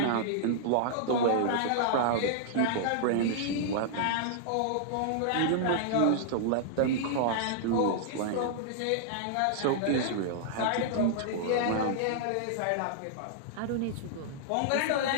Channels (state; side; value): different; both; correlation -0.01